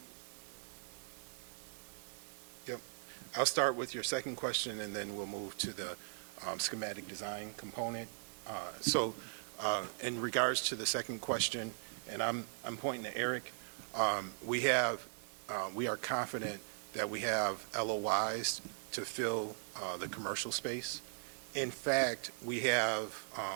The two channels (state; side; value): silent; left; 52 dB below the other